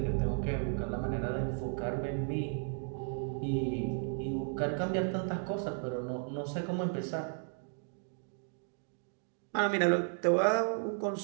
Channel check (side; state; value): left; silent; 55 dB below the other